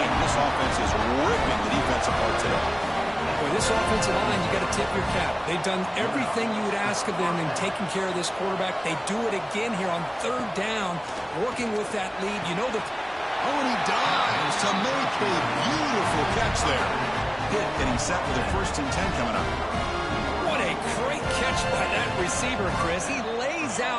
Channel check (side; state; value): both; identical; correlation 1.00